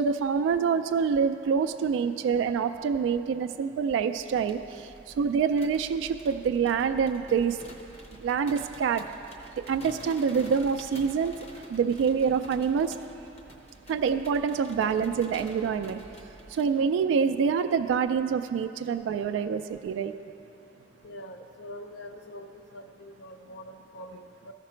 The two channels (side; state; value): left; quieter; 5.9 dB